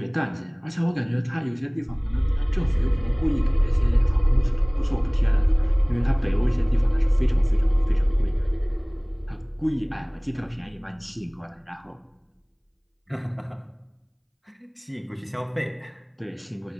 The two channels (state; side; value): identical; both; correlation 1.00